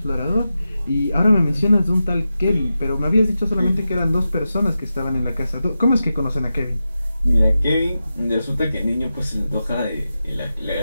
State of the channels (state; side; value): inverted; both; correlation -0.91